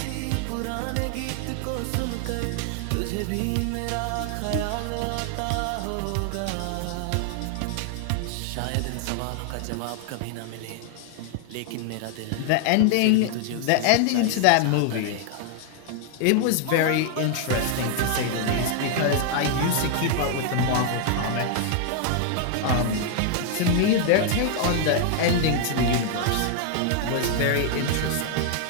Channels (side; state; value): both; different; correlation 0.00